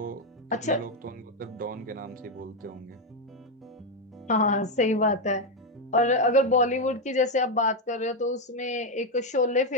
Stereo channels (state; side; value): normal; both; correlation 0.05